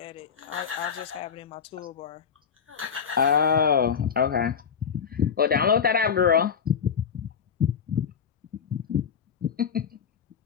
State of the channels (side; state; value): right; quieter; 7.1 dB